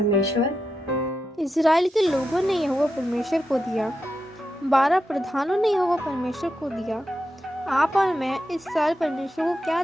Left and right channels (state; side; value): normal; both; correlation 0.87